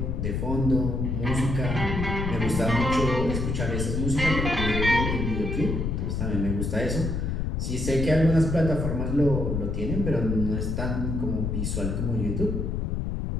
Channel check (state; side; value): noise; left; rumble, 1 dB below the sound